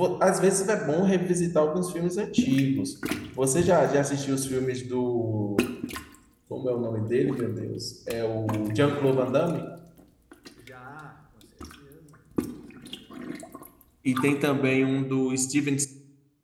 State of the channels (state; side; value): identical; both; correlation 1.00